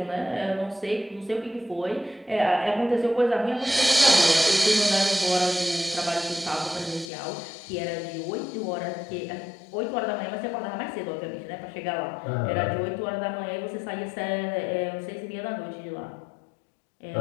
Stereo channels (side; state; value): right; drops out; at 7.1 s